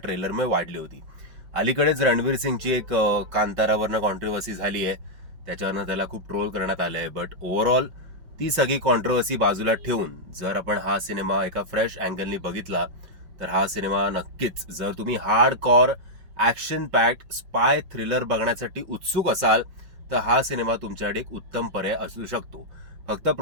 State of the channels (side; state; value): left; late; 5.5 ms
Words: वाढली होती. अलीकडेच रणवीर सिंगची एक कांतारावरनं कॉन्ट्रोवर्सी झाली आहे, त्याच्यावरनं त्याला खूप ट्रोल करण्यात आलं आहे. बट ओव्हरऑल ती सगळी कॉन्ट्रोवर्सी बाजूला ठेवून जर आपण हा सिनेमा एका फ्रेश अँगलनी बघितला तर हा सिनेमा नक्कीच, जर तुम्ही हार्ड कॉर ॲक्शन पॅक्ड स्पाय थ्रिलर बघण्यासाठी उत्सुक असाल तर हा सिनेमा तुमच्याकडे एक उत्तम पर्याय असू शकतो. फक्त